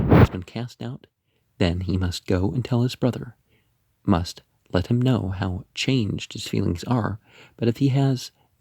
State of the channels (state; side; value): identical; both; correlation 1.00